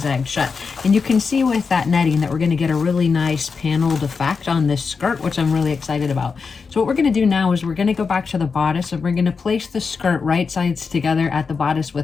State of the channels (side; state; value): right; quieter; 5.1 dB